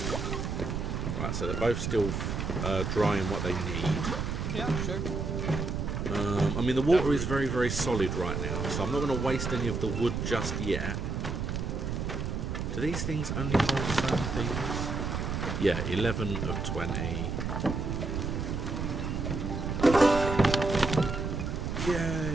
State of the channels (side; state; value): right; noise; rumble, 2 dB below the sound